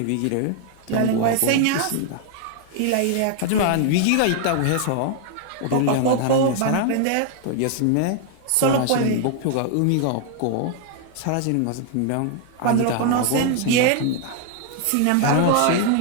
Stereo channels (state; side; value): different; both; correlation 0.00